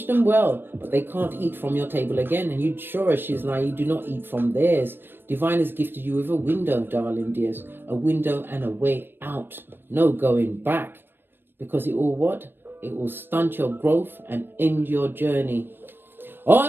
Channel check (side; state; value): left; late; 0.098 ms